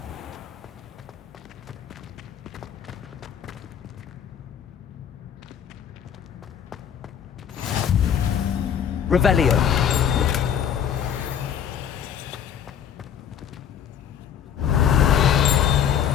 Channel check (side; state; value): right; quieter; 8.7 dB